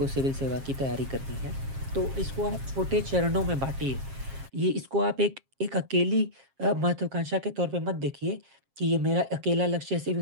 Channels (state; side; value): late; left; 7.4 ms